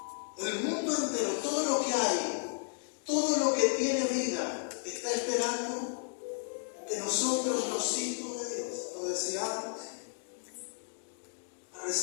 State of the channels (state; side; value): silent; right; 56 dB below the other